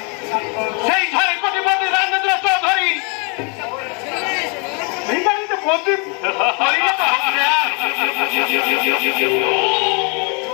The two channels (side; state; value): right; quieter; 35.4 dB